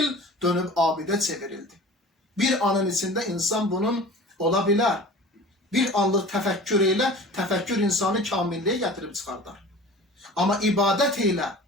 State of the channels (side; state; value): both; normal; correlation 0.40